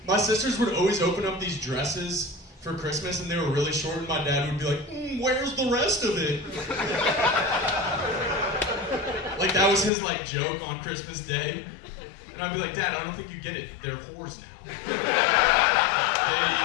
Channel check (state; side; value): drops out; right; at 9.9 s